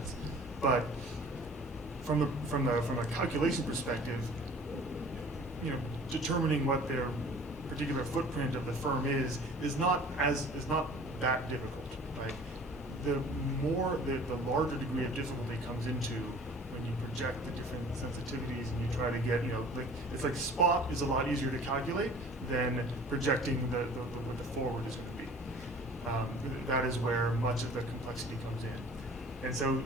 But from a calculation perspective, determining what their particular footprint of the firm is not that difficult, right? The larger degree of difficulty comes into when you project the different sensitivities and you try to get, like it's like spot is a lot easier to calculate than projecting what the forward is going to be. That is where much of the complexity comes in. And so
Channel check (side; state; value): both; normal; correlation 0.47